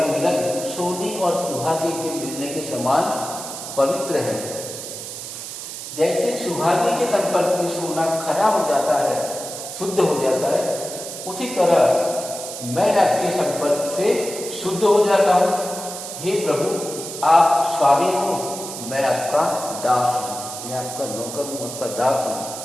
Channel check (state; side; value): noise; right; hiss, 9 dB below the sound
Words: मिलन सोने और सुहागे के मिलने के समान पवित्र है। जैसे सुहागे के संपर्क में सोना खरा हो जाता है, शुद्ध हो जाता है, उसी तरह मैं आपके संपर्क से शुद्ध हो जाता हूँ। हे प्रभु आप स्वामी हो, मैं आपका दास हूँ, मैं आपका नौकर हूँ, आपका दास हूँ।